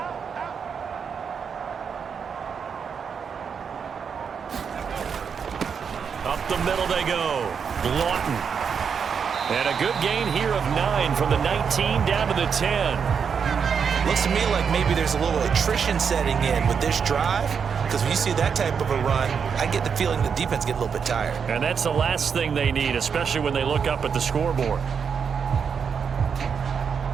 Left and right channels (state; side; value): quieter; left; 6.6 dB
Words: Up the middle they go. Lawton. And a good gain here of 9 from the 19 down to the 10. Looks to me like maybe there's a little attrition setting in with this drive, because when you see that type of a run, I get the feeling the defense get a little bit tired. And that's the last thing they need, especially when they look up at the scoreboard.